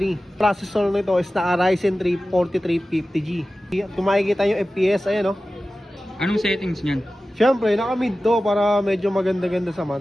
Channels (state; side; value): normal; both; correlation 0.95